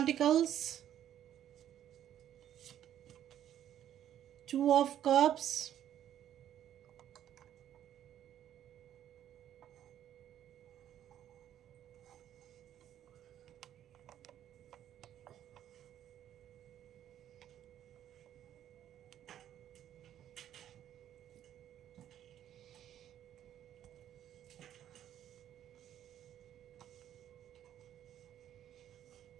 2 of Cups,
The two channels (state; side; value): quieter; left; 11.0 dB